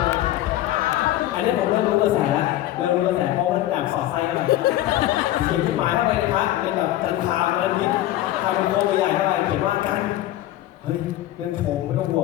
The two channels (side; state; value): right; quieter; 14.4 dB